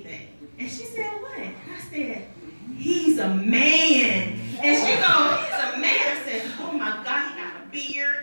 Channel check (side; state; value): both; inverted; correlation -1.00